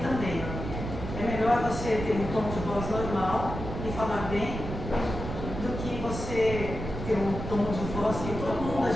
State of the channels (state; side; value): noise; right; rumble, 6 dB below the sound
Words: também. É melhor você ter um tom de voz normal e falar bem do que você ter um tom de voz que todo mundo